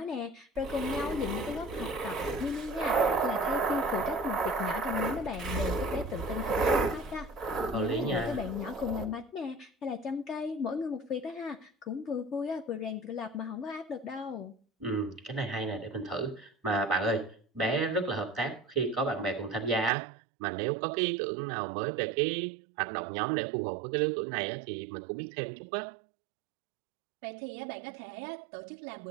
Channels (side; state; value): left; drops out; at 19.9 s